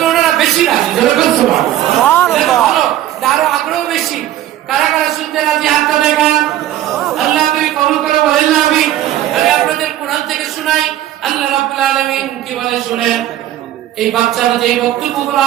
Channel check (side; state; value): left; quieter; 13.0 dB